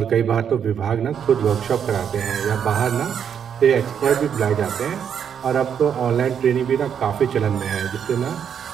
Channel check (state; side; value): quieter; left; 8.1 dB